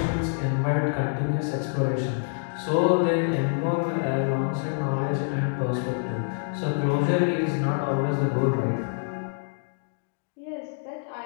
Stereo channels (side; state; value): right; silent; digital silence